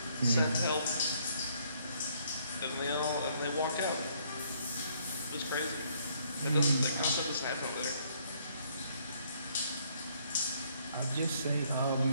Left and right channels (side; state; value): both; inverted; correlation -0.67